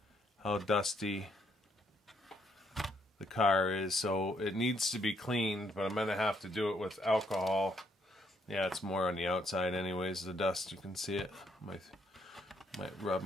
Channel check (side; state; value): both; normal; correlation 0.72